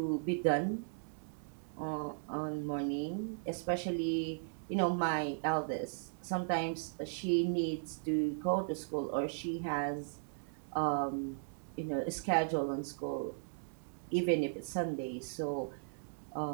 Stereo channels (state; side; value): silent; left; digital silence